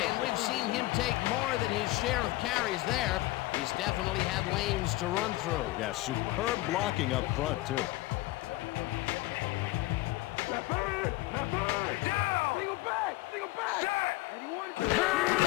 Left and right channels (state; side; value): quieter; right; 19.1 dB